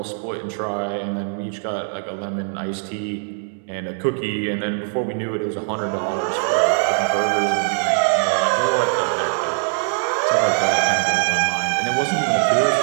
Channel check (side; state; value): left; silent; digital silence